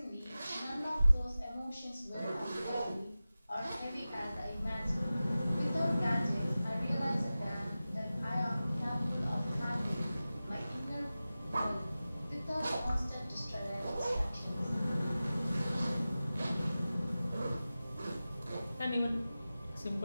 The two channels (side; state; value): both; inverted; correlation -0.96